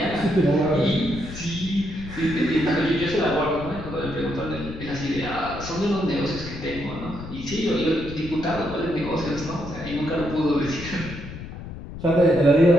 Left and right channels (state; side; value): noise; left; rumble, 11 dB below the sound